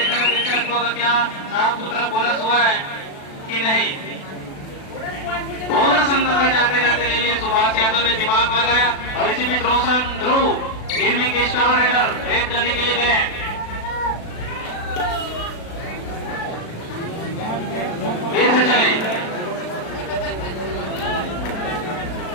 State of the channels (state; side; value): late; right; 36 ms